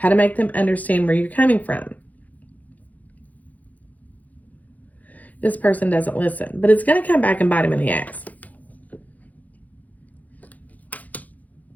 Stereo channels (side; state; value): right; late; 0.078 ms